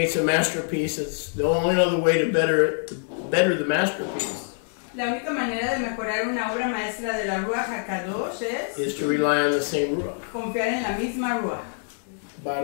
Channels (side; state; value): right; silent; digital silence